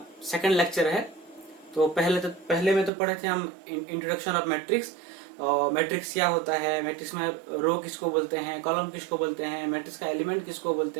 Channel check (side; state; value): left; drops out; at 2.9 s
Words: सेकंड लेक्चर है। तो पहले में तो पढ़े थे हम इंट्रोडक्शन ऑफ मैट्रिक्स। और मैट्रिक्स क्या होता है, मैट्रिक्स में रो किसको बोलते हैं, कॉलम किसको बोलते हैं, मैट्रिक्स का एलिमेंट किसको बोलते